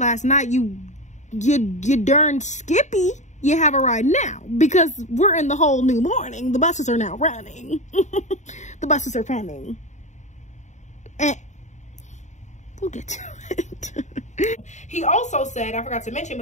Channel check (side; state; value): right; late; 0.34 ms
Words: night, you darn skippy, you have a ride now, because we're in the whole new morning. The buses are now running. The buses are coming. And we'll get to it. He also said, I forgot to mention,